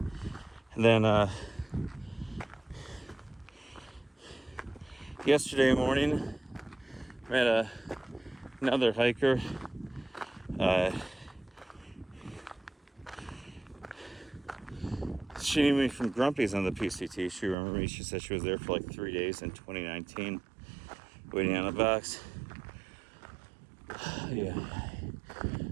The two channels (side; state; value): left; drops out; at 17.6 s